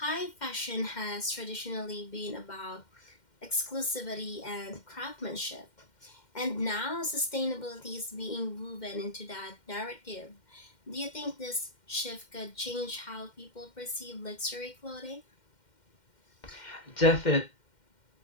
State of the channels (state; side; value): late; right; 2.1 ms